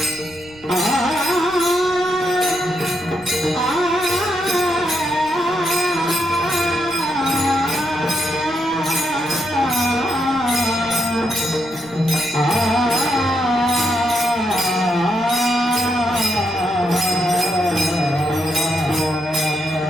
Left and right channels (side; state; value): right; noise; rumble, 24 dB below the sound